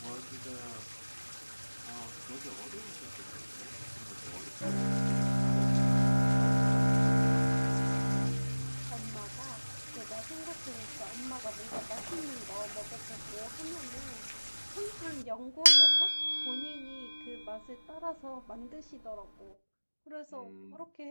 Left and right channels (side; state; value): both; inverted; correlation -1.00